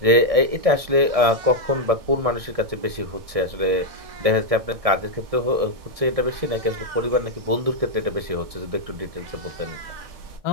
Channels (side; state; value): left; late; 1.6 ms